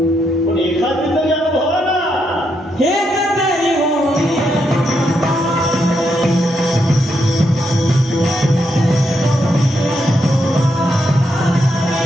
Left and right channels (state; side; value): normal; both; correlation 0.80